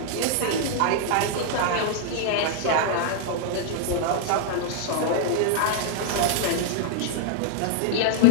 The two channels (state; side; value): different; both; correlation -0.01